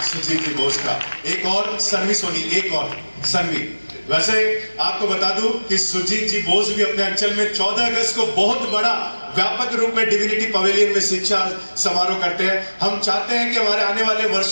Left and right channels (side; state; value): both; inverted; correlation -1.00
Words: सुजीत जी बोस का। एक और सन्वी सोनी, एक और सन्वी। वैसे आपको बता दूं कि सुजीत जी बोस भी अपने अंचल में 14 अगस्त को बहुत बड़ा व्यापक रूप में डिविनिटी पवेलियन में शिक्षा समारोह करते हैं। हम चाहते हैं कि हमारे आने वाले